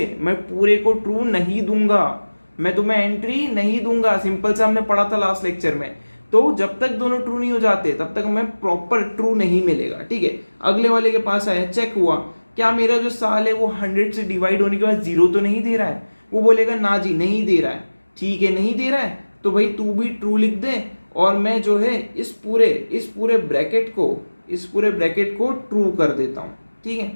मैं पूरे को ट्रू नहीं दूंगा, मैं तुम्हें एंट्री नहीं दूंगा। सिंपल सा हमने पढ़ा था लास्ट लेक्चर में। तो जब तक दोनों ट्रू नहीं हो जाते तब तक हमें प्रॉपर ट्रू नहीं मिलेगा। ठीक है, अगले वाले के पास आया, चेक हुआ क्या मेरा जो साल है वो 100 से डिवाइड होने के बाद 0 तो नहीं दे रहा है? वो बोलेगा ना जी नहीं दे रहा है। ठीक है, नहीं दे रहा है तो भाई तू भी ट्रू लिख दे और मैं जो है इस पूरे ब्रैकेट को ट्रू कर देता हूं। ठीक है,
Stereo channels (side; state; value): both; inverted; correlation -1.00